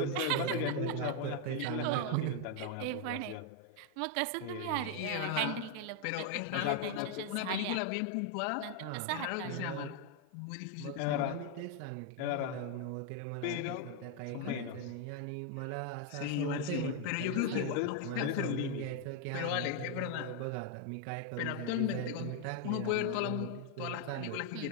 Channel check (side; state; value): both; different; correlation 0.01